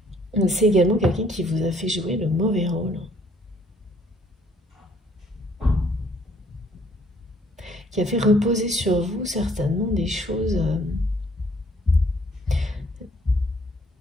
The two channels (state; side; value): normal; both; correlation 0.63